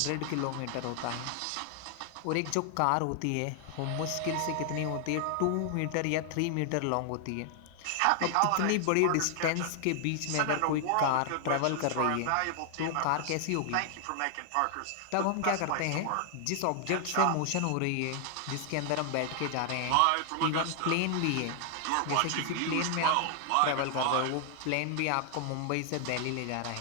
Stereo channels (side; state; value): both; different; correlation 0.00